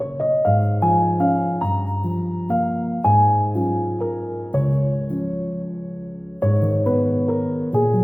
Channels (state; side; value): late; right; 0.068 ms